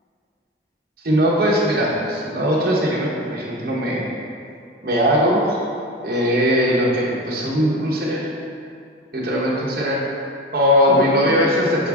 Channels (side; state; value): both; normal; correlation 0.26